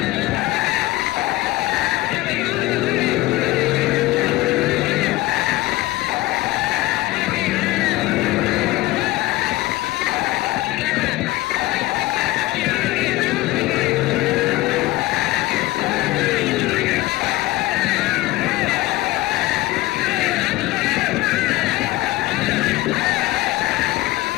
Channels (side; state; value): right; quieter; 18.1 dB